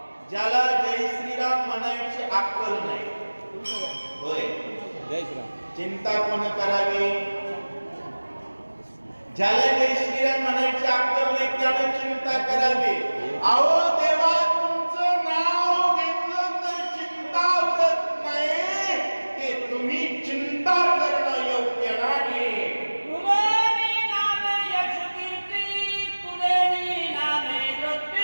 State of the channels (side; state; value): both; inverted; correlation -1.00